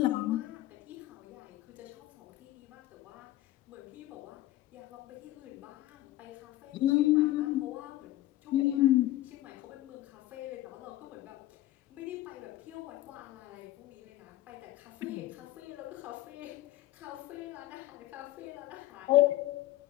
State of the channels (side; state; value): right; quieter; 15.5 dB